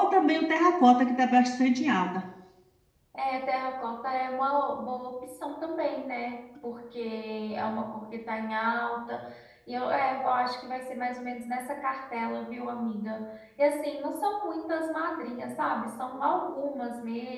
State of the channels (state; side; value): identical; both; correlation 1.00